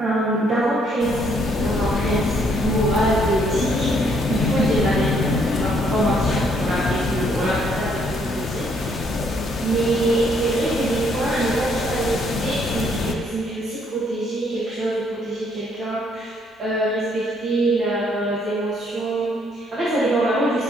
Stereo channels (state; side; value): normal; both; correlation 0.68